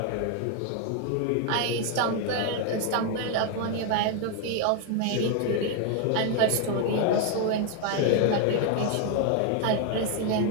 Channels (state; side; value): different; both; correlation 0.00